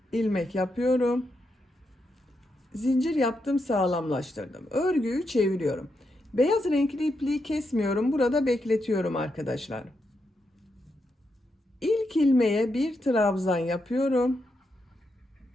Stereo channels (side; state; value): both; normal; correlation 0.83